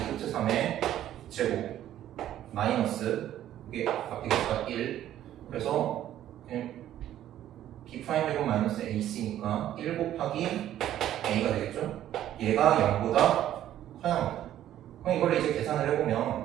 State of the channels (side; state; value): left; quieter; 12.1 dB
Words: 3의 제곱 마이너스 이게 앞에 개수가 1 그래서 b'제곱 마이너스 ac니까 1 곱하기 a가 되겠죠? 얘가 0보다 커야 합니다. 그럼 이걸 이제 계산을